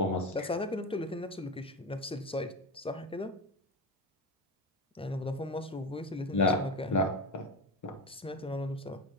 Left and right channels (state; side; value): normal; both; correlation 0.22